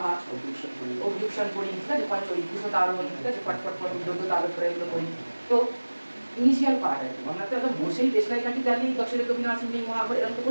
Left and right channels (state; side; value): inverted; both; correlation -1.00